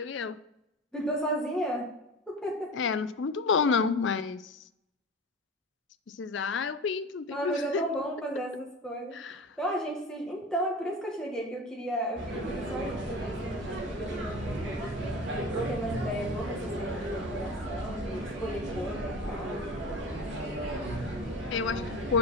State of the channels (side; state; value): both; normal; correlation 0.33